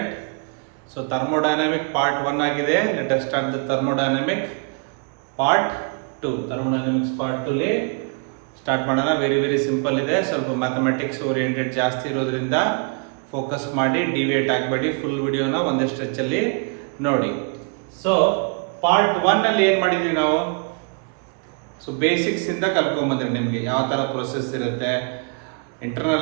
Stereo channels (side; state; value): left; quieter; 35.9 dB